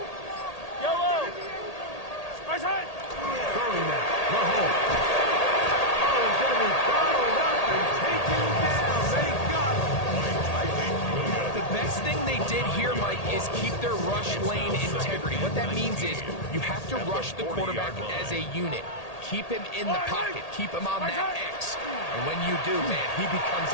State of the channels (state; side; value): late; right; 1.8 ms